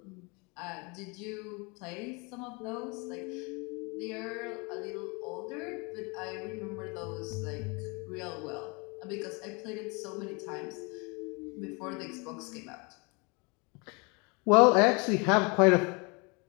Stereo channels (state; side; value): quieter; right; 30.3 dB